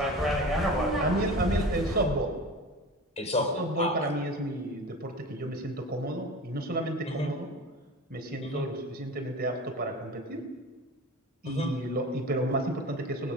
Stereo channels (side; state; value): both; normal; correlation 0.34